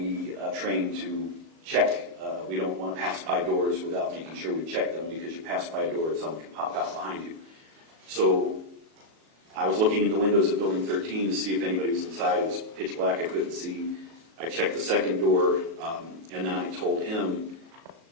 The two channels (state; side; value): late; left; 37 ms